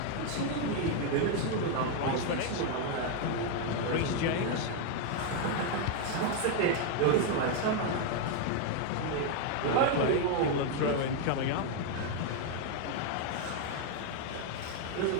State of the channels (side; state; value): both; different; correlation 0.01